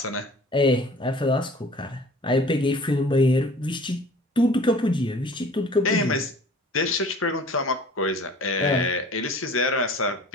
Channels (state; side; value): normal; both; correlation 0.47